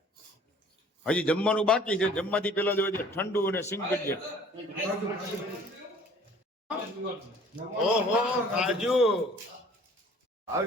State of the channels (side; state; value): both; normal; correlation 0.52